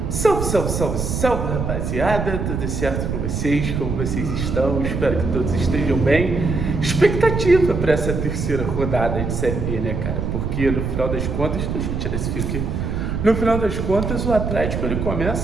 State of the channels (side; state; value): right; noise; rumble, 2 dB below the sound